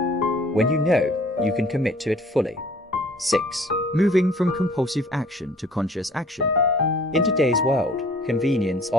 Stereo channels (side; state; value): both; normal; correlation 0.52